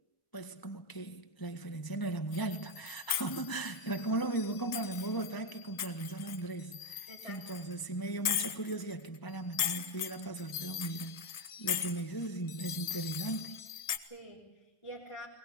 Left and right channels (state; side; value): late; right; 1.7 ms